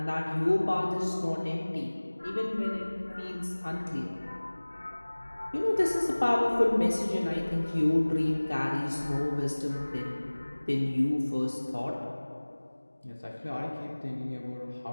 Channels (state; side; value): inverted; both; correlation -1.00